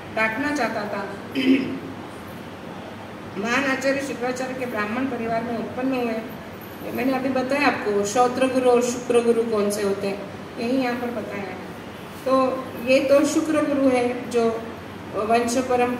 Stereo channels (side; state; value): both; identical; correlation 1.00